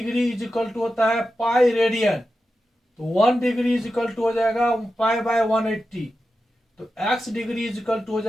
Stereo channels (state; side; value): normal; both; correlation 0.91